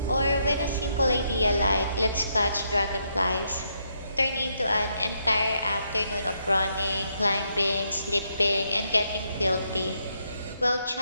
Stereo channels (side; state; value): both; inverted; correlation -0.77